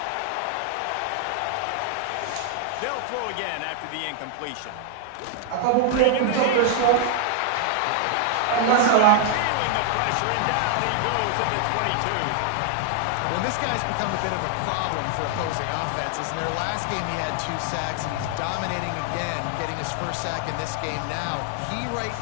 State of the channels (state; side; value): different; both; correlation 0.00